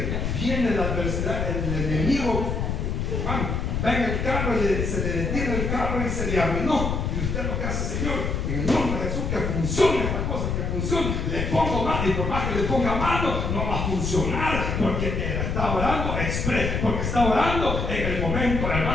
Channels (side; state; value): left; noise; rumble, 1 dB below the sound